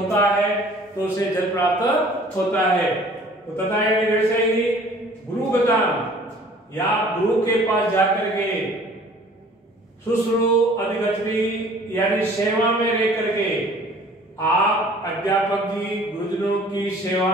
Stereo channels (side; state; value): both; normal; correlation 0.51